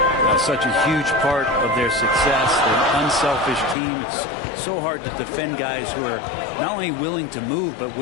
Such a huge part of their success. They're an unselfish team. It's so hard to defend guys who are not only willing to move, but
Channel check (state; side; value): drops out; right; at 3.8 s